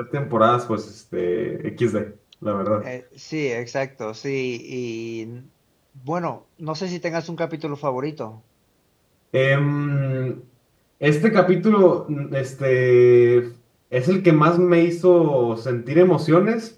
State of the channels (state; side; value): identical; both; correlation 1.00